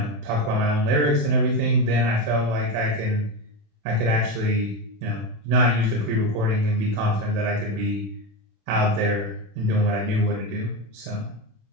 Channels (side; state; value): left; late; 27 ms